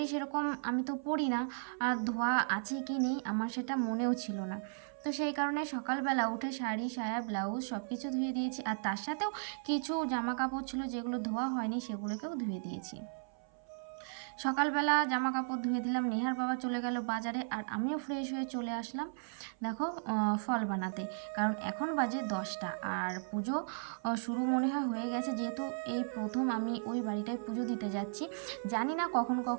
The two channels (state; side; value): silent; left; 54 dB below the other